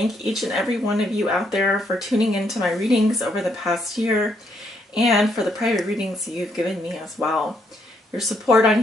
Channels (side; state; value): both; normal; correlation 0.74